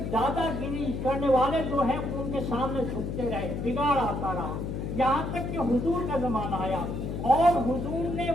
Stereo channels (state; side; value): noise; left; hum, 4 dB below the sound